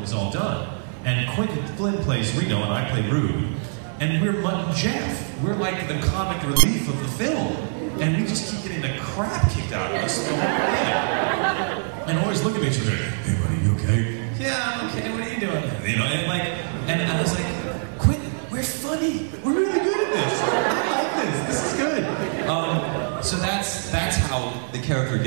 was all done. And Quentin Flynn plays Reno and I play Rude. And we're Mutt and Jeff. We're like the comic relief of the film. And we just keep getting the crap kicked out of us the whole thing. And always look at each other, hey buddy, you okay? Yeah, I'm okay, what are you doing? You know, and I was like, Quentin, we're funny. We're really good at this. I like this. This is good. So that's how the character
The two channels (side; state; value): left; silent; 58 dB below the other